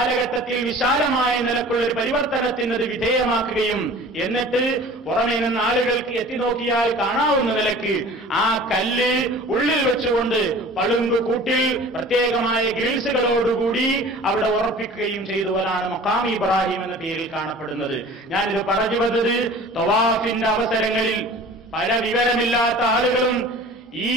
വിശാലമായ നിലക്കുള്ള ഒരു പരിവർത്തനത്തിന് അത് വിധേയമാക്കുകയും എന്നിട്ട് പുറമേ നിന്ന് ആളുകൾക്ക് എത്തിനോക്കിയാൽ കാണാവുന്ന നിലയ്ക്ക് ആ കല്ല് ഉള്ളിൽ വെച്ചുകൊണ്ട് പളുങ്ക് കൂട്ടിൽ പ്രത്യേകമായ ഗ്രിൽസുകളോടുകൂടി അവിടെ ഉറപ്പിക്കുകയും ചെയ്തവരാണ് മഖാം ഇബ്രാഹിം എന്ന പേരിൽ കാണപ്പെടുന്നത്. ഞാനിത് പറഞ്ഞു വന്നത് തവാഫിന്റെ അവസരങ്ങളിൽ പല വിവരമില്ലാത്ത ആളുകളും ഈ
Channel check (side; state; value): both; normal; correlation 0.43